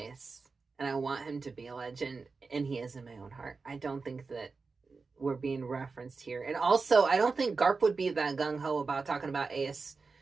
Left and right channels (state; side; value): quieter; left; 4.4 dB